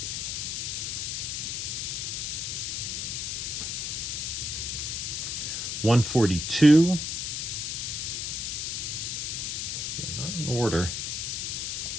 $142. Not in order.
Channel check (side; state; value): left; noise; hiss, 2 dB below the sound